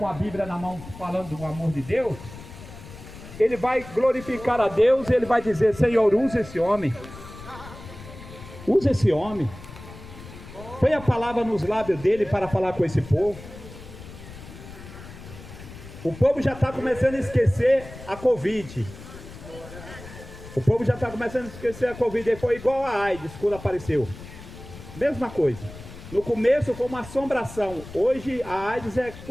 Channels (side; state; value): left; noise; rumble, 15 dB below the sound